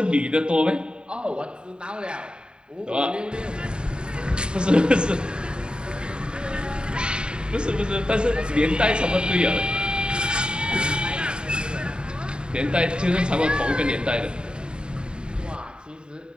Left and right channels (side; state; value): left; late; 0.049 ms